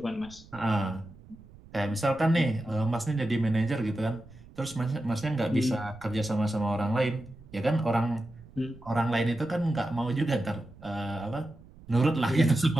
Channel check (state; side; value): noise; right; rumble, 21 dB below the sound